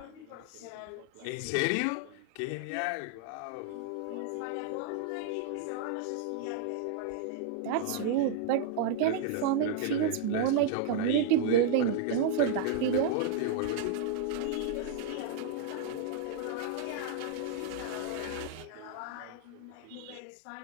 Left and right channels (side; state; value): both; different; correlation -0.01